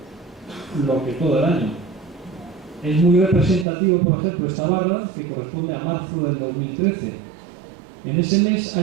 lo que todo el año. Es muy representativo, por ejemplo, esta barra, que corresponde a marzo del 2013. En ese mes ha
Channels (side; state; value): left; drops out; at 3.7 s